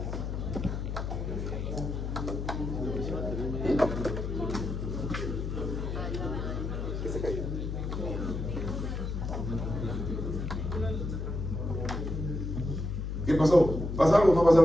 ¿Qué pasó? ¿Pasa algo o no pasa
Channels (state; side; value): noise; left; hum, 3 dB below the sound